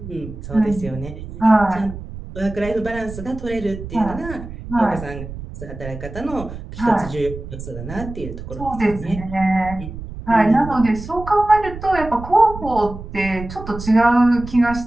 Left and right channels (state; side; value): noise; right; rumble, 11 dB below the sound